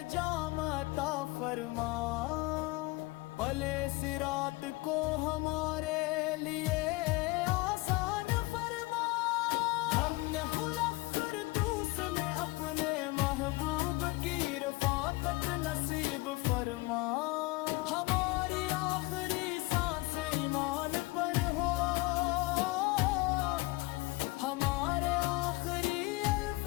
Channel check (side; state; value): right; quieter; 22.8 dB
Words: جام عطا فرما، بھلے صراط کو ہمارے لیے آسان فرما، ہم نے خلق فردوس میں اپنے محبوب کی رفاقت نصیب فرما، ہماری آخری سانس ایمان پر ہو، ہمارے آخری